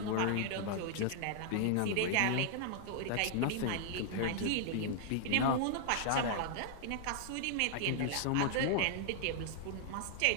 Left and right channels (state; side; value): different; both; correlation -0.01